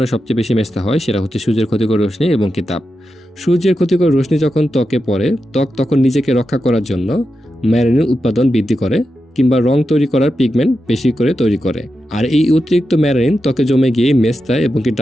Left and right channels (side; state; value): both; normal; correlation 0.89